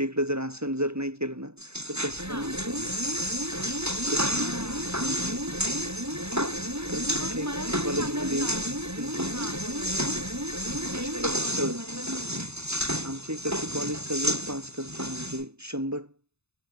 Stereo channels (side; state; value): left; late; 0.80 ms